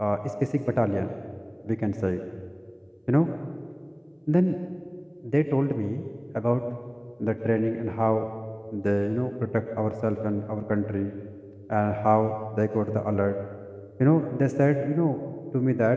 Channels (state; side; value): identical; both; correlation 1.00